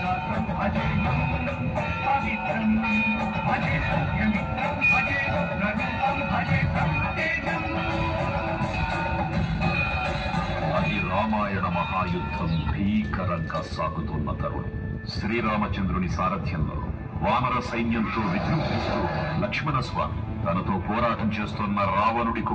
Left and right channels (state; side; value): identical; both; correlation 1.00